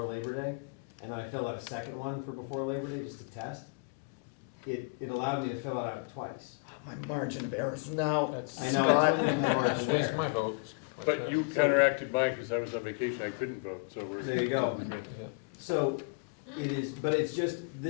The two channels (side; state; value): right; quieter; 31.7 dB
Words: Labor Day, and then I filled out a second one for before Labor Day just to test. It allowed me to fill it out twice. My margin of error is now. I know, it's Waste my vote. But you counteracted mine because I was on vacation, I couldn't vote, so we're. There you go. So it is, but it's just,